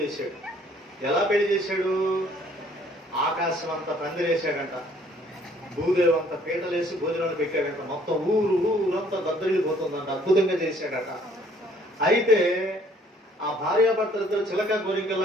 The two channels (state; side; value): normal; both; correlation 0.59